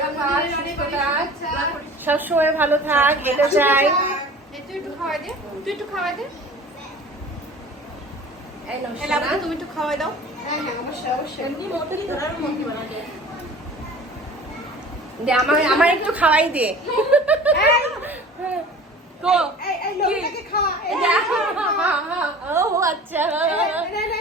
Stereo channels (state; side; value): normal; both; correlation 0.42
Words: থাক, সুস্থ থাক, সবসময় ভালো থাক, এটা চাই। একটু খাওয়াই দে, তুই একটু খাওয়াই দে। এই নাও এলা সোনা। তুমি একটু খাওয়াই দাও। হ্যাঁ হ্যাঁ, অবশ্যই অবশ্যই। এমনি মতই ধরার মতই বানাতে। দে আমার একটু খাওয়াই দে। তো এই এই লোকটাকে খাওয়া। এই ও আচ্ছা, হ্যাঁ।